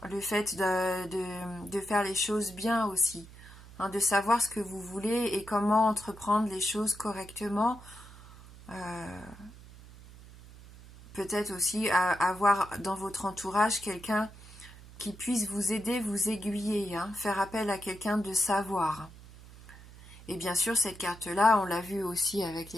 le fait de faire les choses bien aussi, hein, de savoir ce que vous voulez et comment entreprendre les choses correctement. Peut-être aussi avoir dans votre entourage quelqu'un qui puisse vous aider, vous aiguiller, hein, faire appel à quelqu'un de savoir. Et bien sûr, cette carte-là, on l'a vu aussi avec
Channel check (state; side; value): noise; right; hum, 19 dB below the sound